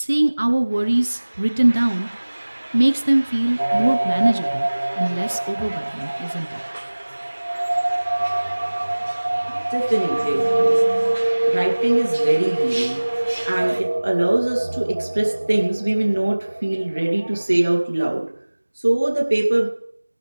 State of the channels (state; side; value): inverted; both; correlation -1.00